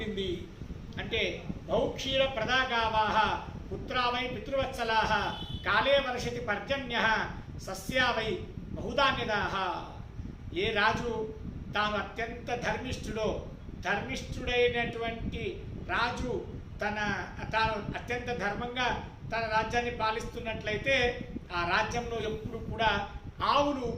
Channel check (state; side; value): identical; both; correlation 1.00